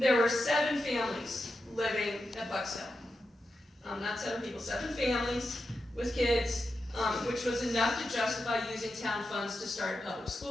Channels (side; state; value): both; normal; correlation 0.89